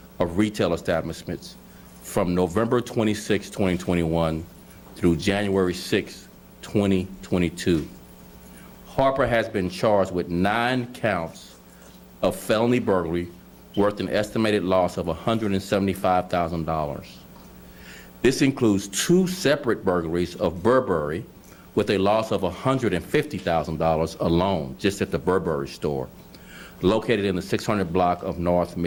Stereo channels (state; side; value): identical; both; correlation 1.00